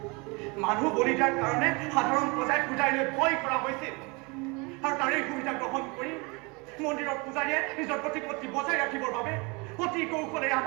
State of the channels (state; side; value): quieter; left; 28.6 dB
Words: মানুহ বলি দিয়াৰ কাৰণে সাধাৰণ প্ৰজাই পূজাৰীলৈ ভয় কৰা হৈছিল আৰু তাৰেই সুবিধা গ্ৰহণ কৰি মন্দিৰৰ পূজাৰীয়ে নিজৰ প্ৰতিপত্তি বজাই ৰাখিবৰ বাবে অতি কৌশলেৰে